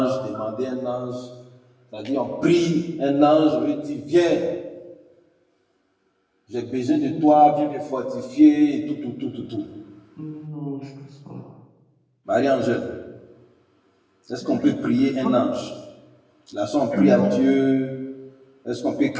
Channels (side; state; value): both; identical; correlation 1.00